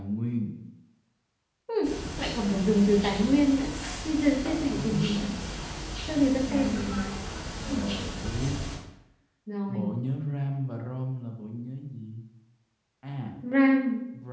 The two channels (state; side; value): identical; both; correlation 1.00